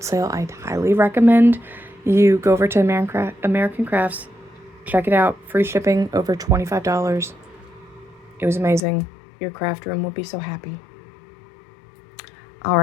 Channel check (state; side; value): drops out; right; at 8.8 s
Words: sale, I'd highly recommend you go over to American Crafts, check it out. Free shipping, over $25. It was amazing. Your craft room will be so happy. All